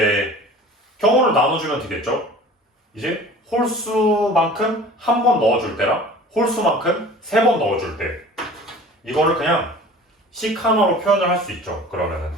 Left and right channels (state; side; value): normal; both; correlation 0.44